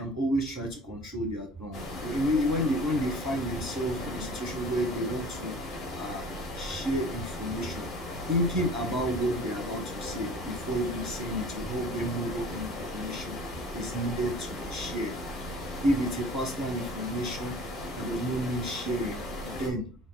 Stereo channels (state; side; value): normal; both; correlation 0.45